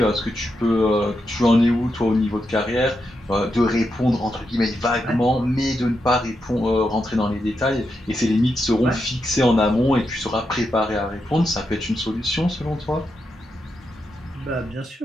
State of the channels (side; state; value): both; normal; correlation 0.85